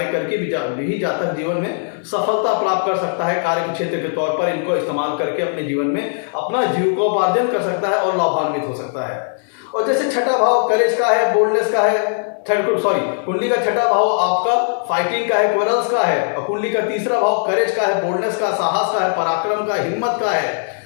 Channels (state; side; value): silent; right; 59 dB below the other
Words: करके भी जातक जीवन में सफलता प्राप्त कर सकता है। कार्य के क्षेत्र के तौर पर इनको इस्तेमाल करके अपने जीवन में अपना जीविकोपार्जन कर सकता है और लाभान्वित हो सकता है। और जैसे छठा भाव करेज का है, बोल्डनेस का है, कुंडली का छठा भाव आपका फाइटिंग का है, क्वेरल्स का है और कुंडली का तीसरा भाव करेज का है, बोल्डनेस का, साहस का है, पराक्रम का, हिम्मत का